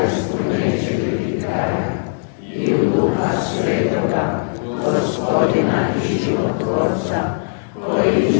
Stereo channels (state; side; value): silent; right; digital silence